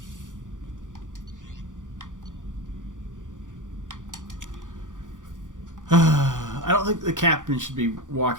I don't think the captain should be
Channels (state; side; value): late; left; 0.87 ms